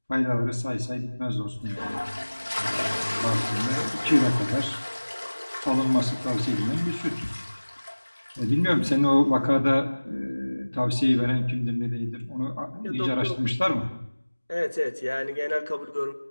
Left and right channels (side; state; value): both; inverted; correlation -1.00